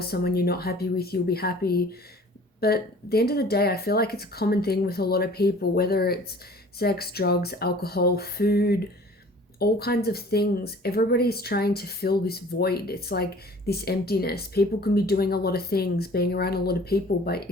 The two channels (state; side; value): normal; both; correlation 0.48